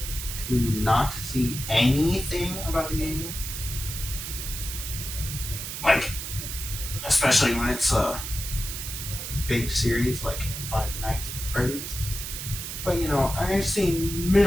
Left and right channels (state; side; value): noise; right; hiss, 6 dB below the sound